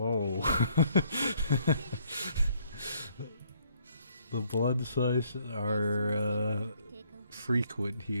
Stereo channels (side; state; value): both; inverted; correlation -0.66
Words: The blood size are frequent